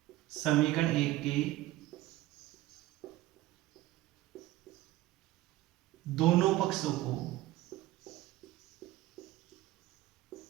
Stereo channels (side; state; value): left; quieter; 16.2 dB